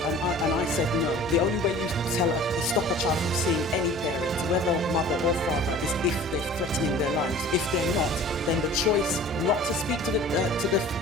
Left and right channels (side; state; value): both; normal; correlation 0.44